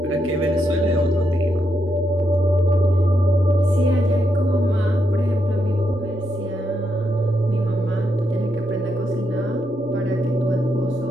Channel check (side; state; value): both; normal; correlation 0.81